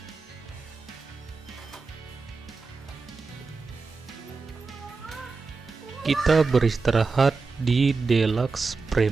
Kita beristirahat di Deluxe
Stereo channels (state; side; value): quieter; left; 4.3 dB